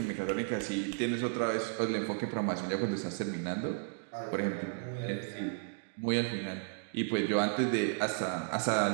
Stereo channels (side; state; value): left; silent; digital silence